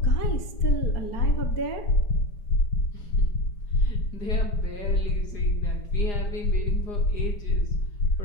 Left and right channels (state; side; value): late; right; 4.4 ms